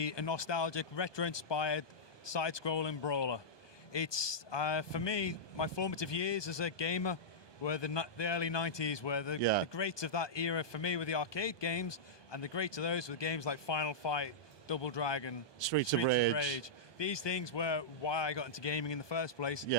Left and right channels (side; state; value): right; late; 1.2 ms